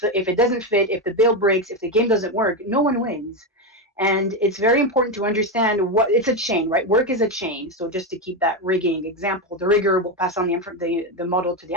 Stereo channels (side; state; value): both; normal; correlation 0.10